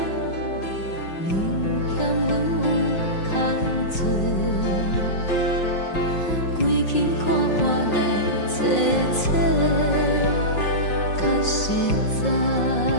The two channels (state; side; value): late; right; 5.5 ms